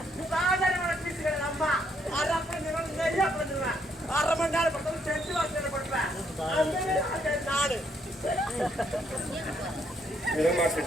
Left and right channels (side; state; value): both; normal; correlation 0.72